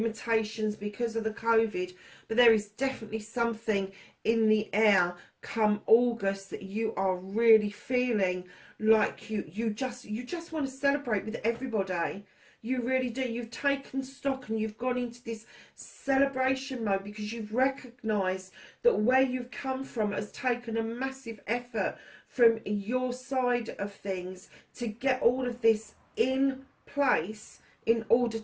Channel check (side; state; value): both; identical; correlation 1.00